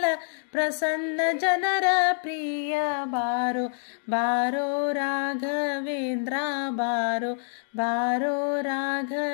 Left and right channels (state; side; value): silent; right; 60 dB below the other